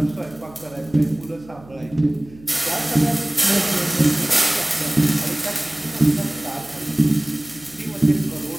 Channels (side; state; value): right; noise; hum, 22 dB below the sound